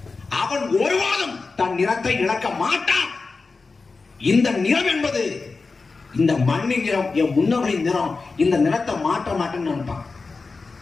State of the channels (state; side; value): quieter; right; 4.1 dB